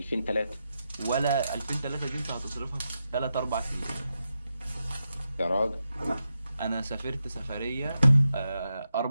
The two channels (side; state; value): both; inverted; correlation -0.87